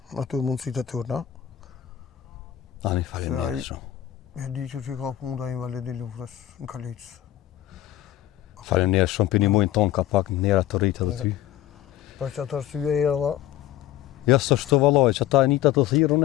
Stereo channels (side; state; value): right; quieter; 12.8 dB